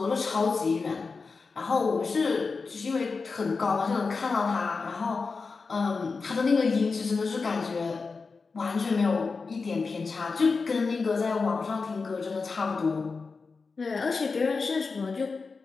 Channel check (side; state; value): right; quieter; 4.5 dB